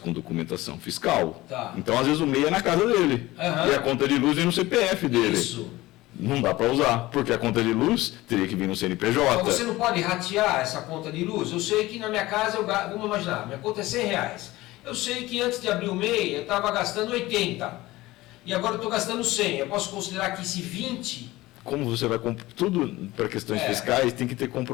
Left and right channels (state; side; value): quieter; right; 18.5 dB